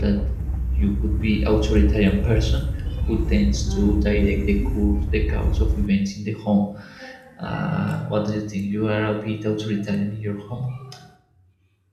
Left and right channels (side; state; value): both; identical; correlation 1.00